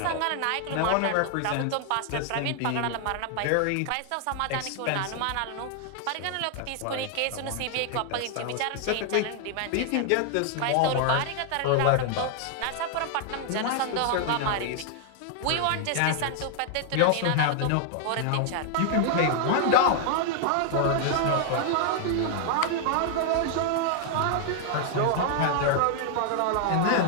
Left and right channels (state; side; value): different; both; correlation 0.00